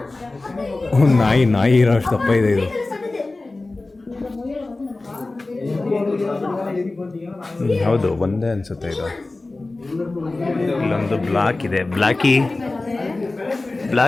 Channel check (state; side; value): quieter; right; 3.2 dB